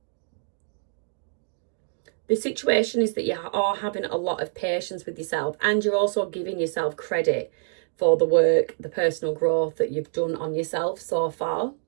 The situation is that you are having a lot of patience with yourself, and you're also giving yourself credit for the work, the personal growth that you've done on yourself so far.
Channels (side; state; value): left; silent; digital silence